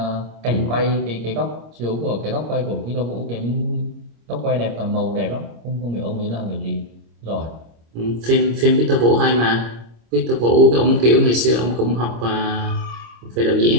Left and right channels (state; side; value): late; left; 26 ms